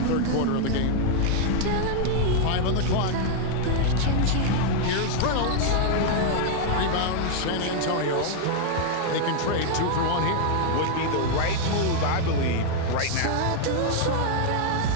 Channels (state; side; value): different; both; correlation 0.00